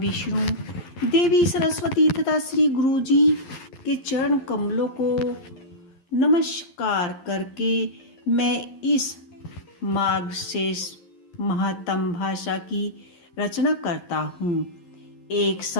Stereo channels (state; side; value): late; right; 11 ms